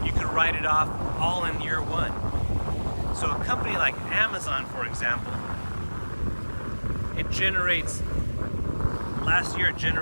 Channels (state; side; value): inverted; both; correlation -1.00